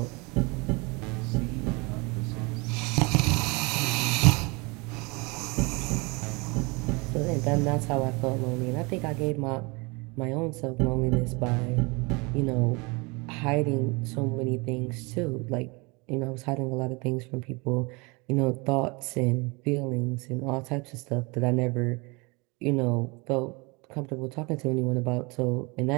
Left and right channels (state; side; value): quieter; left; 27.9 dB